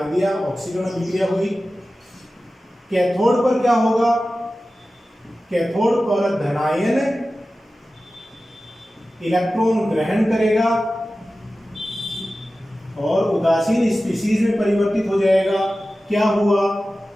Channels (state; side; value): normal; both; correlation 0.95